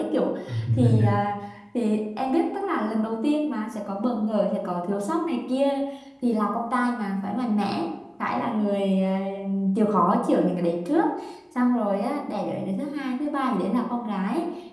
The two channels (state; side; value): identical; both; correlation 1.00